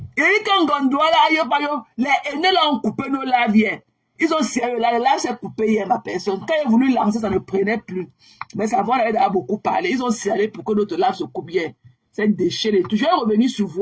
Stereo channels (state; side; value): identical; both; correlation 1.00